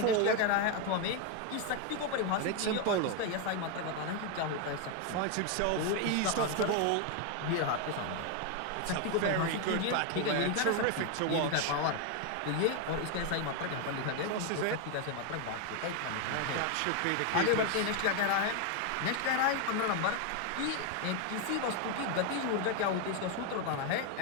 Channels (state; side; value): different; both; correlation 0.01